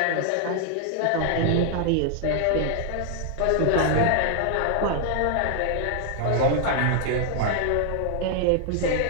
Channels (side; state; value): both; different; correlation 0.00